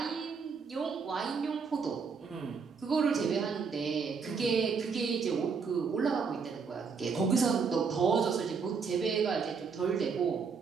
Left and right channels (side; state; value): left; quieter; 5.5 dB